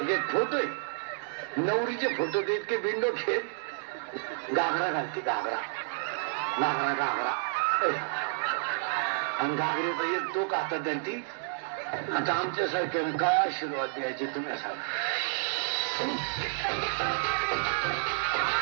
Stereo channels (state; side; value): silent; left; digital silence